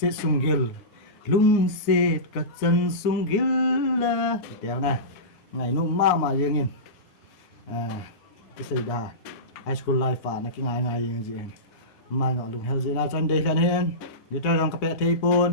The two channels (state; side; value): late; right; 9.5 ms